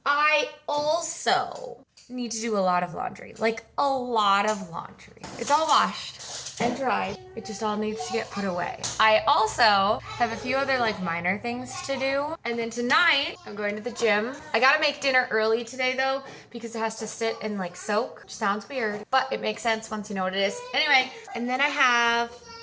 I also need to do a lot of laundry, like a lot of laundry. It's all washed and dried. It just all needs to get put away. I also have a few other minor things to do. And then tonight I'm going to the gym. I gotta make dinner early today though, because it has to sit and soak, which sounds weird, but it makes sense once you know what it is. Anyway, and then I have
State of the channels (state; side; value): identical; both; correlation 1.00